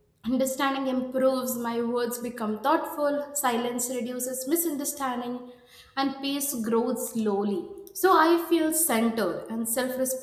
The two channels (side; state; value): both; identical; correlation 1.00